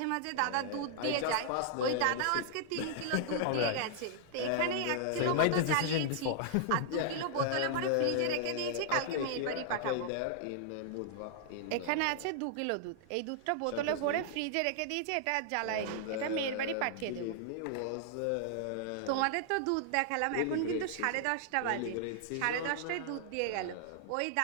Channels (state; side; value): different; both; correlation -0.01